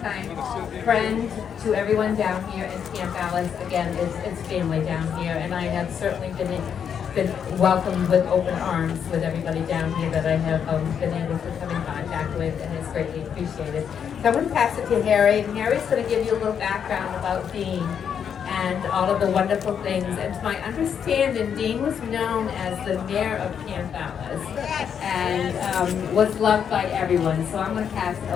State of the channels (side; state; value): right; quieter; 7.8 dB